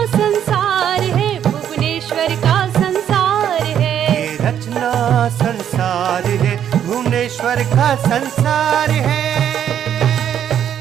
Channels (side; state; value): left; quieter; 9.6 dB